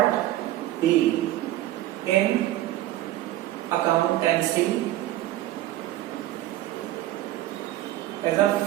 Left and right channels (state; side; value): quieter; left; 14.9 dB